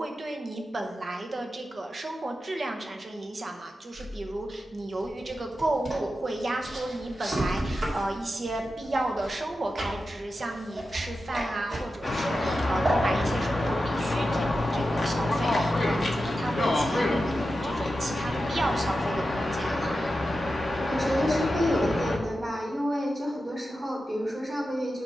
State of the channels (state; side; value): normal; both; correlation 0.91